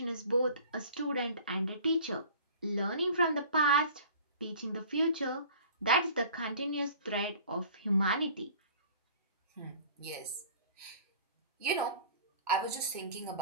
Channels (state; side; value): inverted; both; correlation -0.46